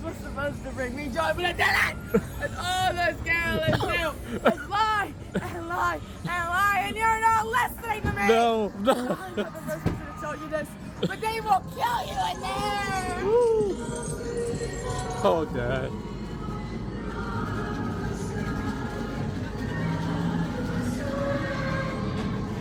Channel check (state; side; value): identical; both; correlation 1.00